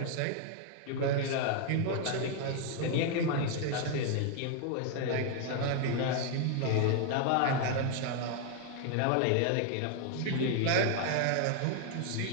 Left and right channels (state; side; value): different; both; correlation 0.00